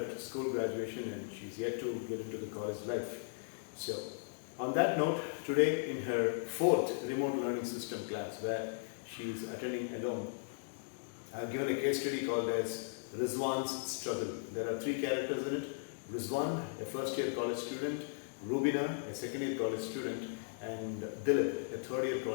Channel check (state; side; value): silent; right; digital silence